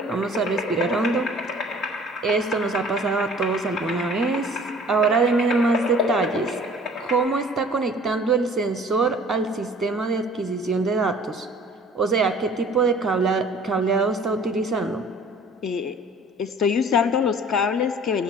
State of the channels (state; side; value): normal; both; correlation 0.50